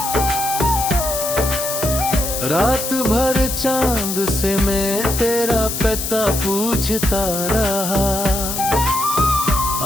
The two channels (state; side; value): noise; left; hiss, 4 dB below the sound